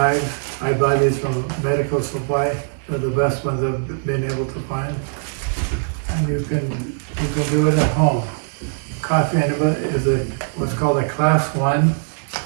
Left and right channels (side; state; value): left; silent; 65 dB below the other